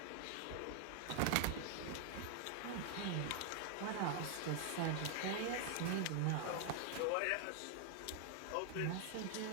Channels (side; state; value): both; different; correlation 0.00